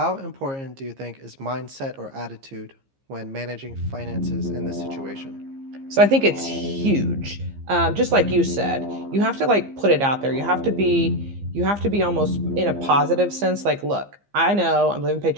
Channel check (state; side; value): late; left; 15 ms